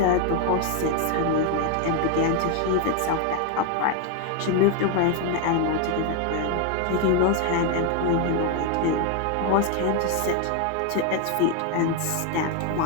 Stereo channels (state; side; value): different; both; correlation 0.01